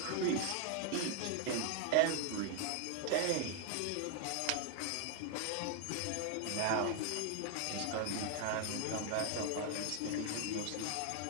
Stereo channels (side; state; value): both; different; correlation 0.00